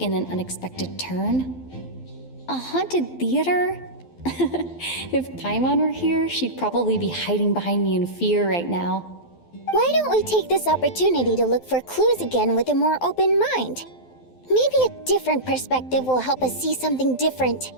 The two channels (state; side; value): late; right; 12 ms